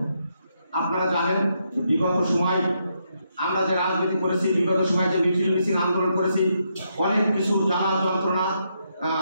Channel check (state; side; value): inverted; both; correlation -0.79